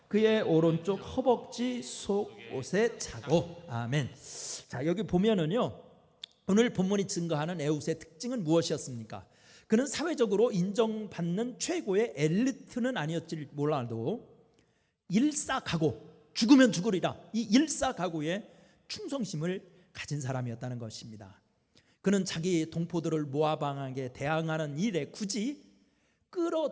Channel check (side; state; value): both; identical; correlation 1.00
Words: 그의 오른쪽 허벅지 속옷에 차고. 아멘. 자, 여기 보면은요, 오늘 본문이 증거하는 에훗의 특징은 무엇이었습니까? 그는 사회적으로 인정받는 최고의 엘리트는 아니었지 몰라도 일사각오, 죽으면 죽으리라, 이 일사각오의 충성심을 가진 사람이었다는 것입니다. 그는 자기 동포들을 모압 왕에게 대항하는 일에 굳이